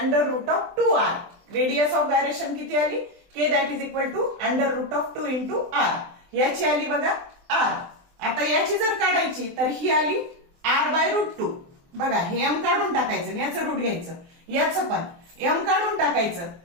रेडियस ऑफ गायरेशन किती आली? k that is equal to √2 into r. याची आली बघा r. आता याची जर काढायची तर ही आली r/√2. बघा हे m काढून टाकायचं आणि याचं रूट घ्यायचं, याचं पण m काढून टाकायचं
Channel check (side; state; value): left; late; 23 ms